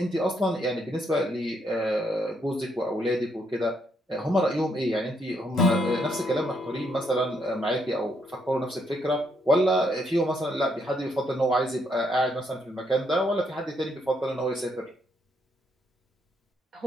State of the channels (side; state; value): both; normal; correlation 0.74